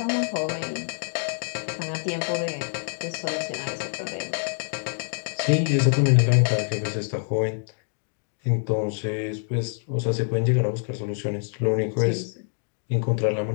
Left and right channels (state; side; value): silent; right; 61 dB below the other